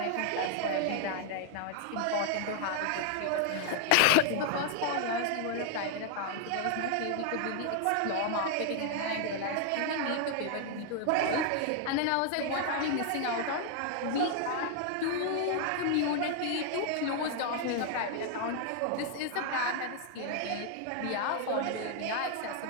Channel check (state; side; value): different; both; correlation 0.00